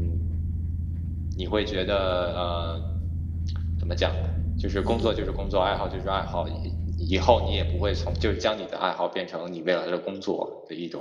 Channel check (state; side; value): identical; both; correlation 1.00